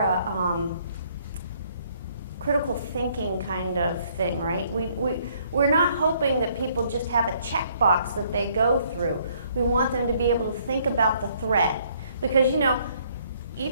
critical thinking kind of thing, right? We're not hoping that people just have a checkbox that they go through. We want them to be able to think about the threat. Because, you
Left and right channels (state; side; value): inverted; both; correlation -0.65